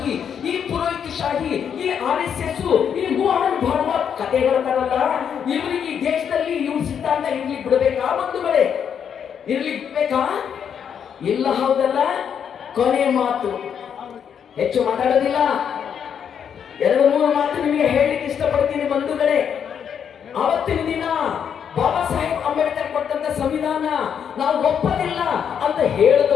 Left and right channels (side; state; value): right; quieter; 7.9 dB